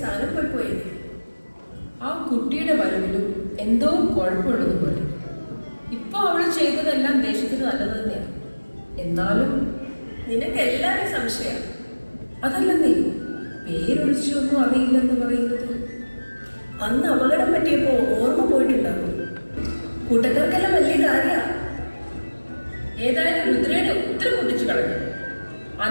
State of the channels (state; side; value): inverted; both; correlation -1.00